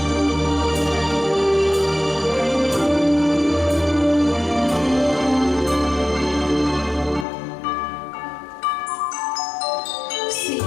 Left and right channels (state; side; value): drops out; right; at 7.2 s